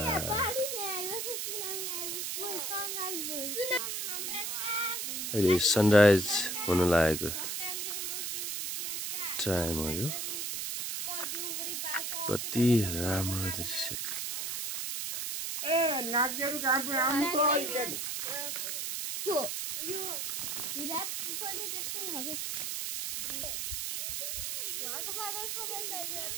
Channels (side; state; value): right; noise; hiss, 2 dB below the sound